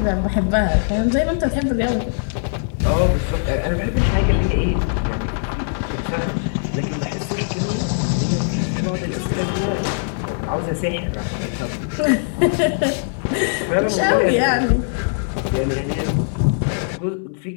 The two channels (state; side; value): silent; right; digital silence